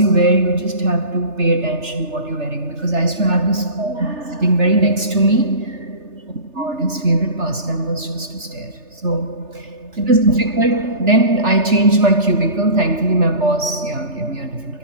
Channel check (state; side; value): late; left; 3.3 ms